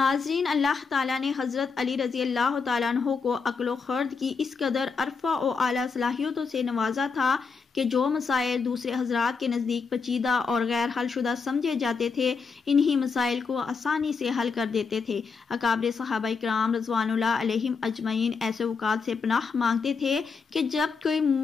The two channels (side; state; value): right; quieter; 5.1 dB